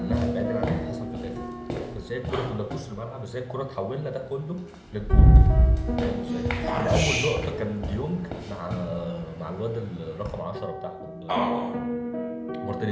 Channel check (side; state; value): both; identical; correlation 1.00